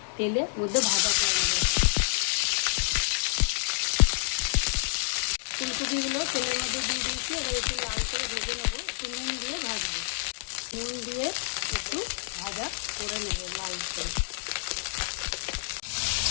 তেলের মধ্যে ভাজা করে নেব। ফুলকপিগুলো তেলের মধ্যে দিয়ে দিয়েছি, এবার একটু লাল করে ভেজে নেবো। একটু নুন দিয়ে ভাজবো, নুন দিয়ে একটু ভাজা করে নেব লাল করে।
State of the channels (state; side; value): silent; right; 59 dB below the other